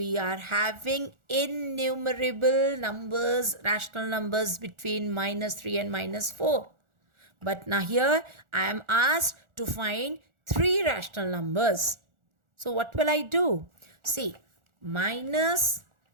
are having innumerable numbers, rational numbers between -3 and -4. But now here I am asked to find three rational numbers. So what will I do? See,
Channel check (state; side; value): late; left; 1.4 ms